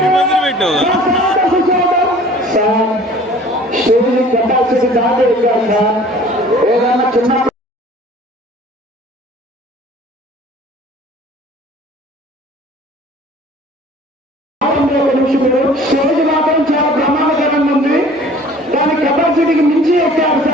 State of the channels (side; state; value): both; normal; correlation 0.49